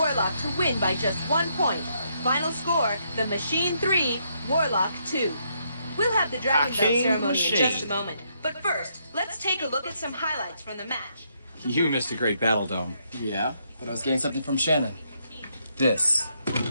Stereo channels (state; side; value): inverted; both; correlation -0.75